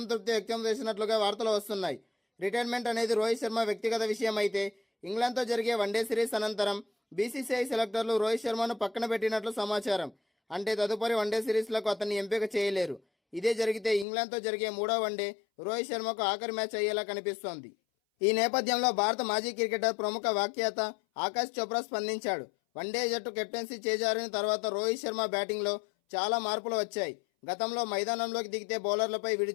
వ్యక్తం చేసినట్లుగా వార్తలు వస్తున్నాయి. రిటైర్మెంట్ అనేది రోహిత్ శర్మ వ్యక్తిగత విషయం అయితే, ఇంగ్లాండ్తో జరిగే వన్డే సిరీస్ అనంతరం బీసీసీఐ సెలెక్టర్లు రోహిత్ శర్మను పక్కన పెట్టినట్లు సమాచారం. అంటే తదుపరి వన్డే సిరీస్లకు అతన్ని ఎంపిక చేయలేరు. ఇదే జరిగితే ఇంగ్లాండ్తో జరిగే 3వ వన్డే రోహిత్ శర్మకు ఆఖరి మ్యాచ్ అయ్యేలా కనిపిస్తోంది. ఈ నేపథ్యంలో భారత మాజీ క్రికెటర్, ప్రముఖ వ్యాఖ్యాత ఆకాష్ చోప్రా స్పందించాడు. వన్డే జట్టు కెప్టెన్సీ చేజారిన తర్వాత రోహిత్ శర్మ బ్యాటింగ్లో చాలా మార్పులు వచ్చాయి. గతంలో మైదానంలోకి దిగితే బౌలర్లపై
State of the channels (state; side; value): drops out; right; at 14.1 s